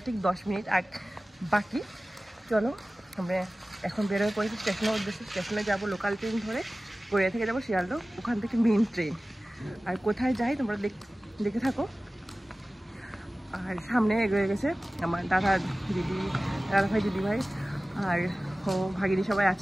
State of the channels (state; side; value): normal; both; correlation 0.97